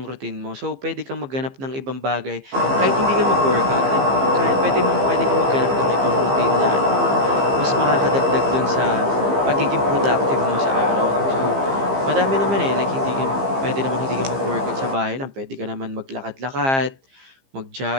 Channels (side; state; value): left; late; 15 ms